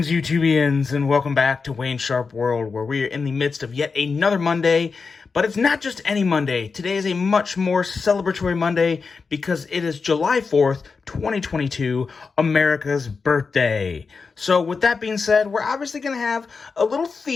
YouTubians, and welcome back to Wayne Sharp World, where we are in the midst of yet another Monday. But it's not just any Monday. Today is a much more celebratory Monday because it is July 4th, 2022, America's birthday. So with that being said, we're obviously going to have a little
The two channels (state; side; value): quieter; right; 4.9 dB